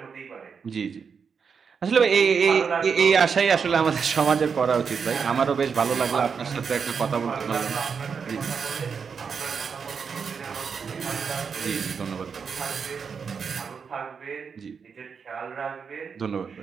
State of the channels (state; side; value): quieter; left; 6.1 dB